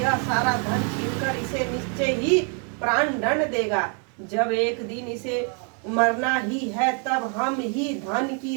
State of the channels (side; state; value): left; quieter; 39.2 dB